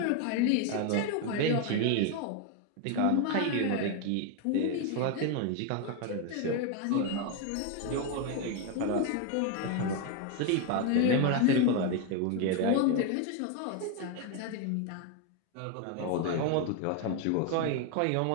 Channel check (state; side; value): different; both; correlation 0.01